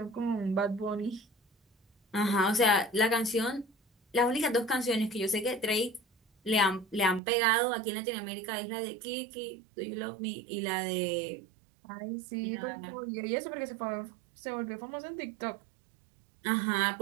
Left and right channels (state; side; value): drops out; left; at 7.2 s